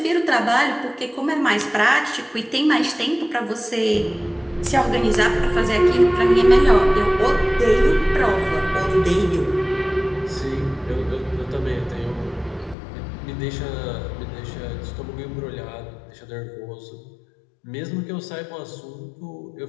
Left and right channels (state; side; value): drops out; right; at 12.8 s